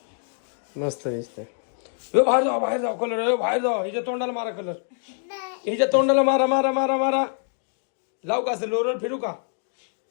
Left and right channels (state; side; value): silent; right; 62 dB below the other